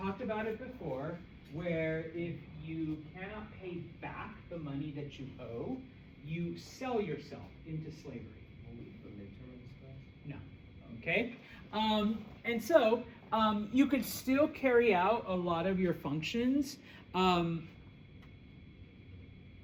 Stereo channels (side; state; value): both; identical; correlation 1.00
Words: about it before, where if you cannot pay back the money that you owe, you sell yourself into slavery. No. Okay? And so you could still carry out a lot of your functions